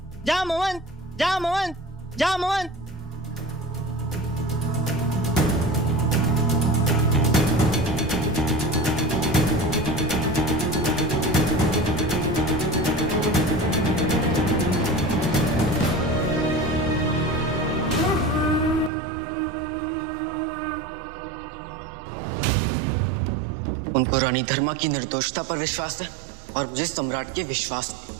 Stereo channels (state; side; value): drops out; left; at 18.9 s